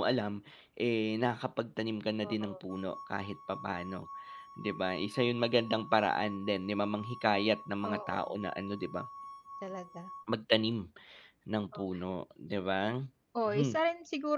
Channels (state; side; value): identical; both; correlation 1.00